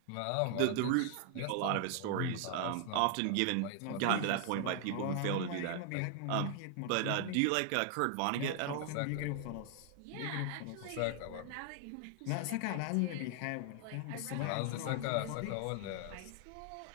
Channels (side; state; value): both; different; correlation 0.00